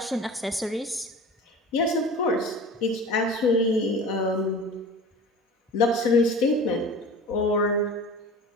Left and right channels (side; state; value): both; normal; correlation 0.38